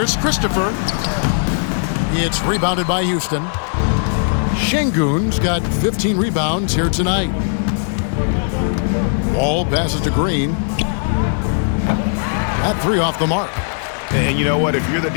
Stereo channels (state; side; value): silent; right; digital silence